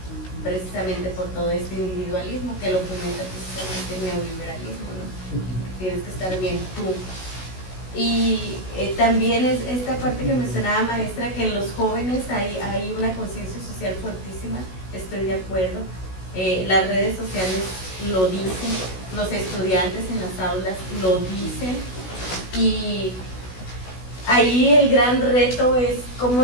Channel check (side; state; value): right; late; 16 ms